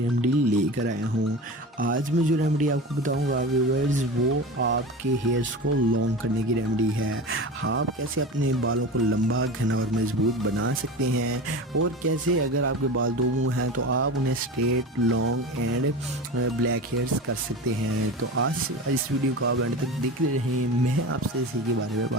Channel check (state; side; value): normal; both; correlation 0.30